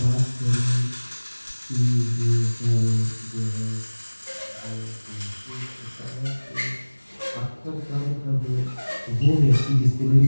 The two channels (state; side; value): inverted; both; correlation -1.00